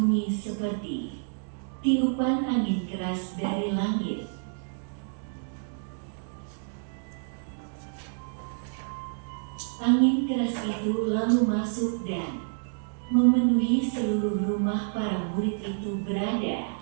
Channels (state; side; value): silent; left; digital silence